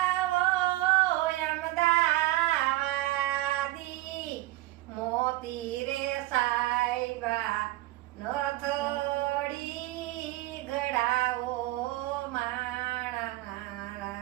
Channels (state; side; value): quieter; left; 18.0 dB